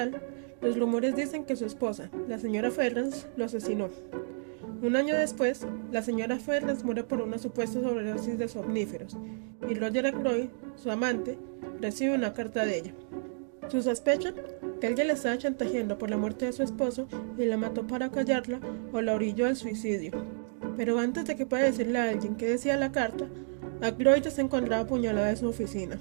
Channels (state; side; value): silent; left; digital silence